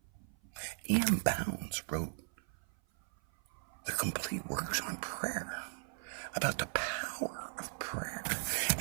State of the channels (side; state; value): left; silent; 53 dB below the other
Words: E.M. Bounds wrote The Complete Works on Prayer, about the power of prayer.